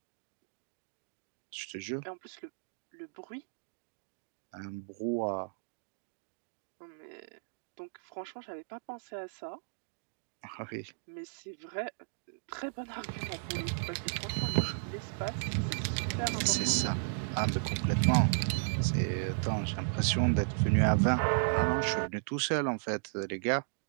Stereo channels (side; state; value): left; silent; digital silence